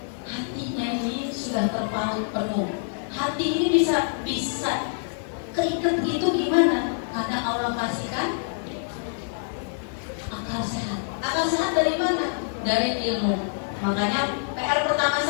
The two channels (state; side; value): silent; right; digital silence